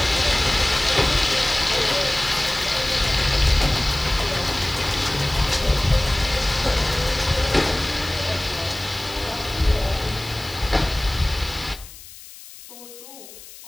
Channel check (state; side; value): noise; left; hiss, 17 dB below the sound